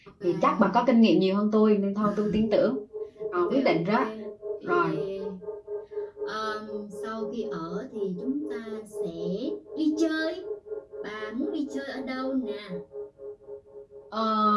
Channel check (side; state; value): both; identical; correlation 1.00